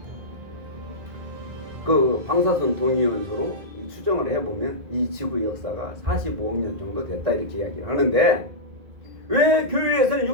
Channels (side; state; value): left; late; 1.9 ms